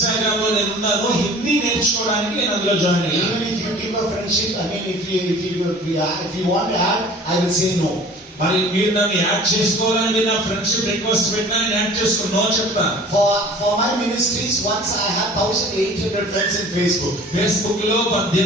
లో నేను ఉన్నాను హిందీ నేర్చుకోవడానికి నేను అందులో జాయిన్ అయ్యాను. Even if you give a friendship, if you want to add, I will say no. మరి మీరు నన్ను యాడ్ చేసుకోవాలని మీరు నా ఫ్రెండ్షిప్ రిక్వెస్ట్ పెట్టినా నేను యాడ్ చేసుకుని నో చెప్తాను. For my ministries, once I had 1800 friends in Facebook. Facebook లో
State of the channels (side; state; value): both; normal; correlation 0.46